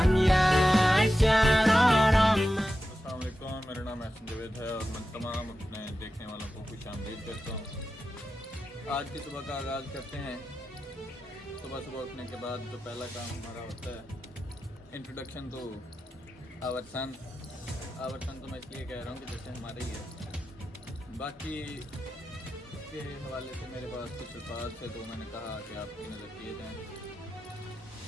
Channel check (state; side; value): normal; both; correlation 0.92